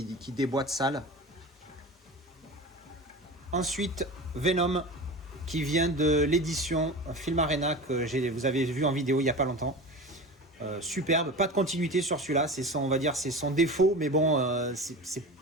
déboîte sale. Ensuite, Venom, qui vient de l'édition Film Arena, que vous avez vu en vidéo il n'y a pas longtemps. Superbe, pas de continuité sur celui-là, c'est son défaut, mais bon, c'est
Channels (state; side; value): normal; both; correlation 0.31